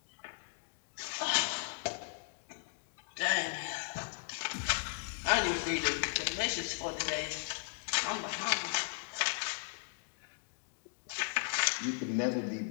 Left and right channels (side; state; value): right; silent; digital silence